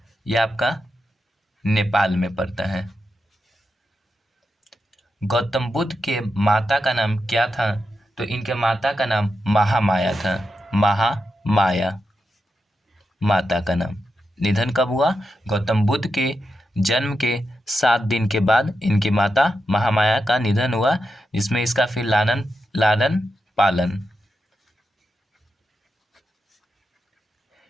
यह आपका नेपाल में पड़ता है। गौतम बुद्ध के माता का नाम क्या था? तो इनके माता का नाम महामाया था। महामाया माता का नाम। निधन कब हुआ? गौतम बुद्ध के जन्म के 7 दिन के बाद इनकी माता महामाया का निधन हुआ, जिसमें इसका फिर लालन पालन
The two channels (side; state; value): both; normal; correlation 0.87